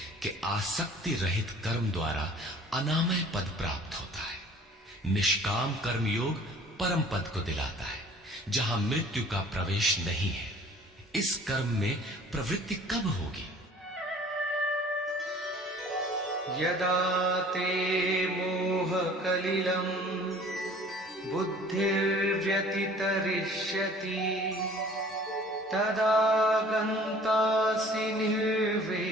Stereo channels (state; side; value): normal; both; correlation 0.50